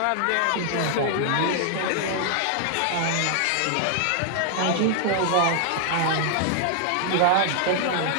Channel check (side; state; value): both; different; correlation 0.00